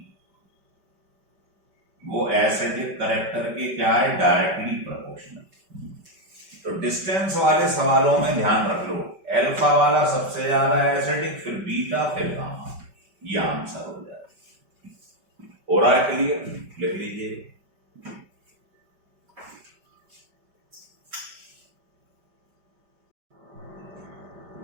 वो एसिडिक कैरेक्टर के क्या है, डायरेक्टली प्रोपोर्शनल। तो डिस्टेंस वाले सवालों में ध्यान रख लो, अल्फा वाला सबसे ज्यादा एसिडिक, फिर बीटा, फिर गामा, ये आंसर हो जाएगा। हो रहा है क्लियर? लिख लीजिए।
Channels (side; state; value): left; late; 5.2 ms